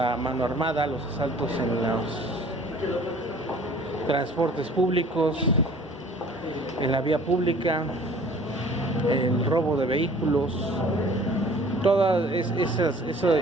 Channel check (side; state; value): both; normal; correlation 0.51